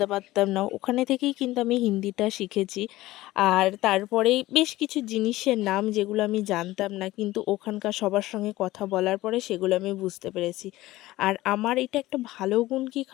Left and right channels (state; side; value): quieter; right; 17.3 dB